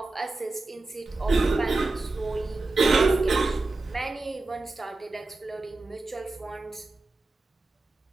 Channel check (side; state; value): left; quieter; 3.3 dB